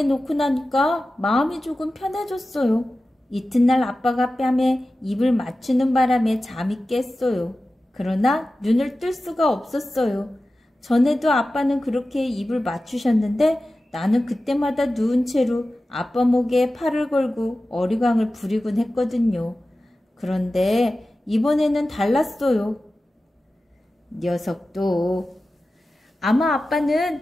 놓고 나니까 마음이 조금 편해졌어요. 이튿날 아빠가 뺨에 입을 맞추는 바람에 잠이 깼어요. 그러나 눈을 뜰 수가 없었어요. 전에도 아빠는 그렇게 입을 맞추셨는데 나는 그때마다 누운 채로 아빠 목에 팔을 걸고 어리광을 부리곤 했거든요. 그런데 이번에는 달랐어요. 녀석도. 아마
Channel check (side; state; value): both; normal; correlation 0.95